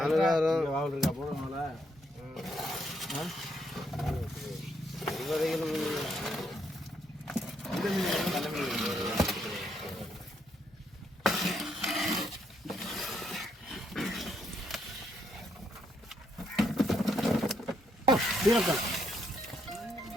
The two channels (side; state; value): left; noise; hum, 30 dB below the sound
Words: மாவல் இருக்கா போறனால